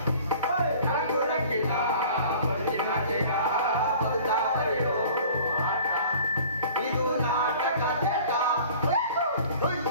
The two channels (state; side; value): inverted; both; correlation -0.47